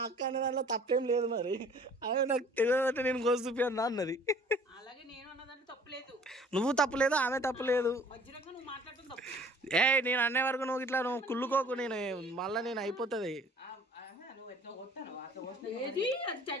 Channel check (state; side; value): normal; both; correlation 0.52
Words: అక్క అనే దాంట్లో తప్పేం లేదు. మరి అదే నాకు తెలియదంటే నేను కోసి చూపియన్నా అన్నది. అలాగే నేను అన్నదాన్ని తప్పలేదు, నువ్వు తప్పలేదు, ఆమె తప్పలేదు. మధ్యలో నువ్వు మాట్లాడటం తప్పు. నేను అనే వరకు నువ్వు ఇట్లా నువ్వు కుళ్ళుకోకు, నేను మళ్ళీ నేను అయిపోతుంది. ఏది అది